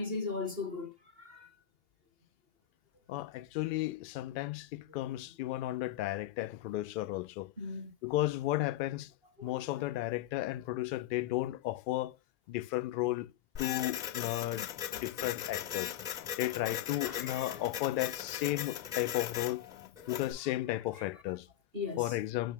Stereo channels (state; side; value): quieter; right; 13.0 dB